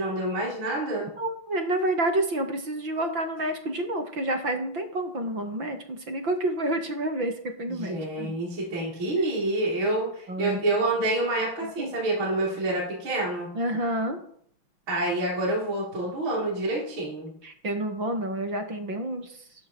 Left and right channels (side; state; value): left; late; 5.8 ms